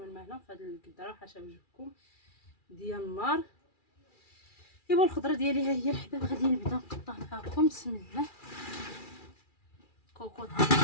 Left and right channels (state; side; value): late; right; 2.4 ms